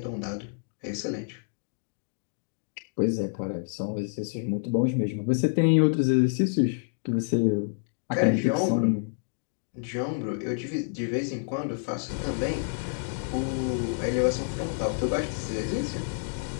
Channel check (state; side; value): silent; right; digital silence